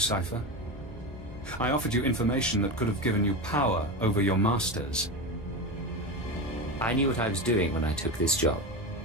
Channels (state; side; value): normal; both; correlation 0.20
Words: I offered you information that could have given you power over your masters. I knew what I was doing when I took this job.